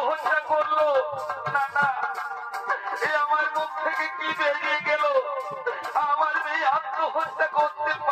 করলো? না না, এ আমার মুখ থেকে কি বেরিয়ে গেল? আমার মেয়ে আত্মহত্যা করতে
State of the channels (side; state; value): both; identical; correlation 1.00